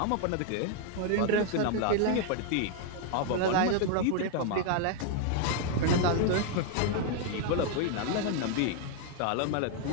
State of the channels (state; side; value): different; both; correlation 0.00